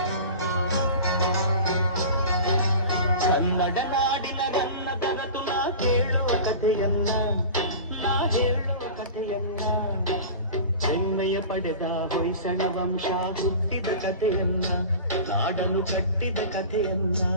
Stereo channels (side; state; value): both; inverted; correlation -0.36